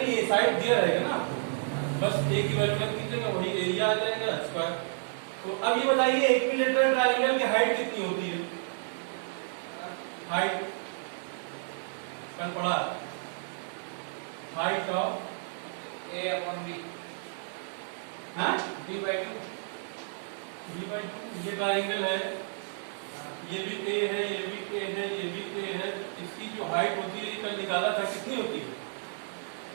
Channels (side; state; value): left; silent; digital silence